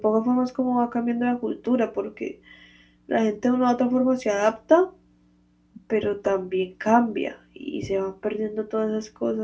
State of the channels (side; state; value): both; identical; correlation 1.00